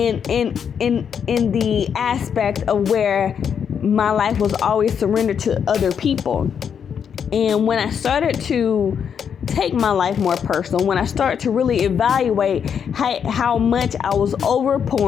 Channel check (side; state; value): right; quieter; 7.5 dB